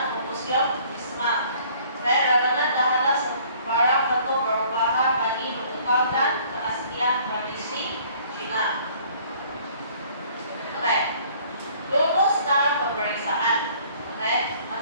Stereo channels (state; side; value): inverted; both; correlation -0.56